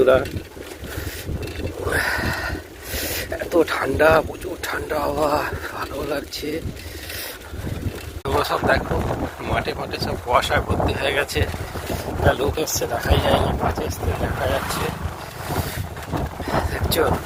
এত ঠান্ডা, প্রচুর ঠান্ডা হাওয়া, ভালো লাগছে। তোমরা সব দেখো, মাঠে মাঠে সব কুয়াশায় ভর্তি হয়ে গেছে। একটা লোক এসছে, দেখাই যায়নি, মাঠে এসছে দেখা যাচ্ছে, দেখছো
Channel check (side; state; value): both; identical; correlation 1.00